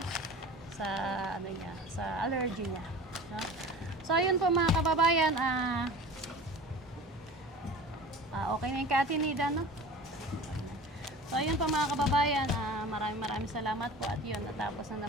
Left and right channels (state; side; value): normal; both; correlation 0.39